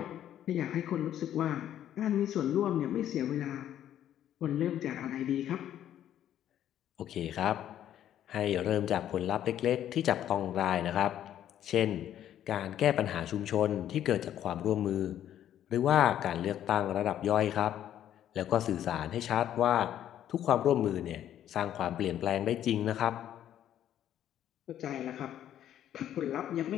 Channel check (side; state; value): right; quieter; 11.1 dB